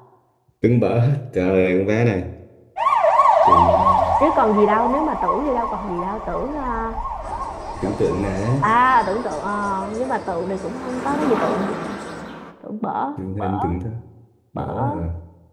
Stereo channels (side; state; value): both; identical; correlation 1.00